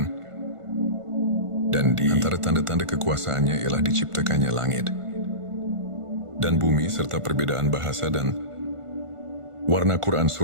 dan di antara tanda-tanda kekuasaannya ialah diciptakannya langit dan bumi serta perbedaan bahasa dan warna. Quran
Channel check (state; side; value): late; left; 1.5 ms